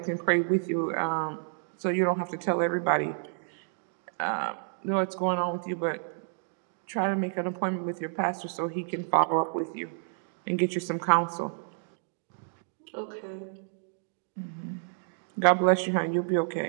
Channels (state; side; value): silent; left; digital silence